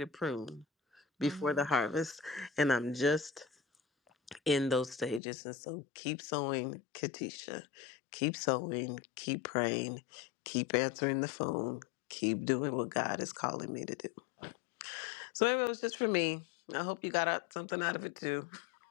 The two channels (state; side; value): drops out; right; at 5.2 s